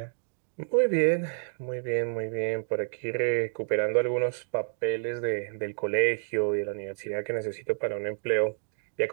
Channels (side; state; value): left; silent; digital silence